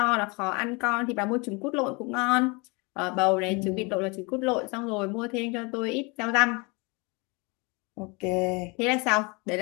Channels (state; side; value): quieter; right; 28.7 dB